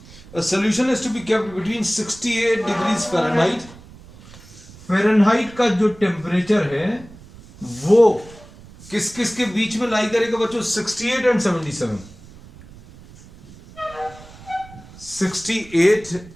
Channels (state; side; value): noise; right; rumble, 20 dB below the sound